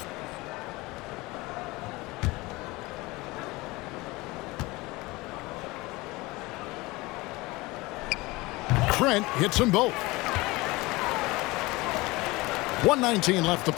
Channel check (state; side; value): quieter; right; 22.0 dB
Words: Trent hits them both. 1:19 left to